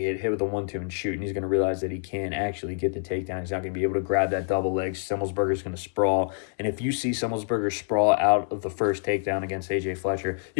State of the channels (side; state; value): right; silent; 59 dB below the other